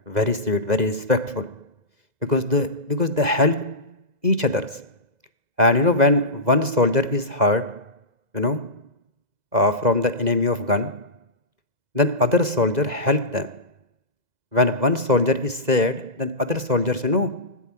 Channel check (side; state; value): left; late; 2.0 ms